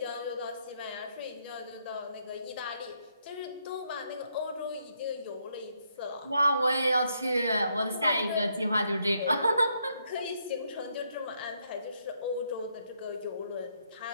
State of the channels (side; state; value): both; inverted; correlation -0.74